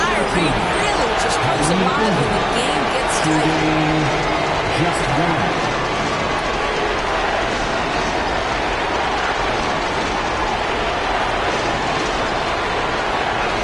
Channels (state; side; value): identical; both; correlation 1.00